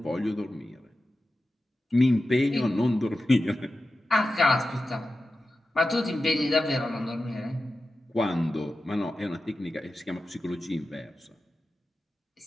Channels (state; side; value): normal; both; correlation 0.92